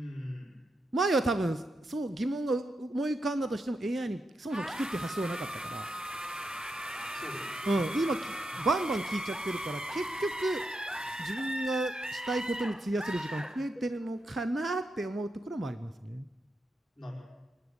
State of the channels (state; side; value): normal; both; correlation 0.85